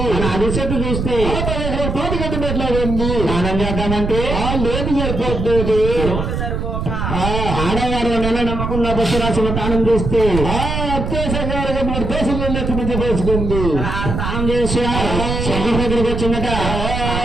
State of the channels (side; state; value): right; noise; rumble, 3 dB below the sound